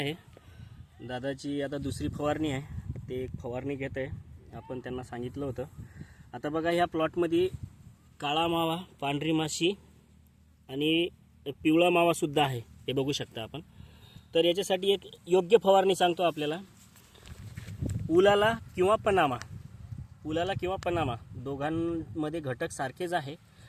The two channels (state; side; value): identical; both; correlation 1.00